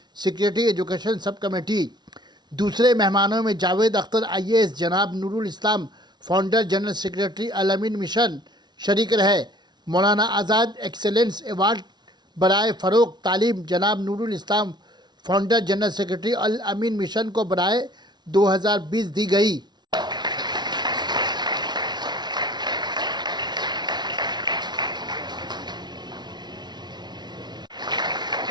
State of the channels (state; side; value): late; left; 0.20 ms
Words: secretary education sub committee. दूसरे मेहमानों में जावेद अख्तर IAS, जनाब Nurul Islam, founder general secretary Al Ameen mission शरीक रहे। मौलाना आज़ाद एक्सेलेंस अवार्ड बराए फ़रोग़ तालीम जनाब Nurul Islam, founder general secretary Al Ameen mission को बराए 2020 दी गई।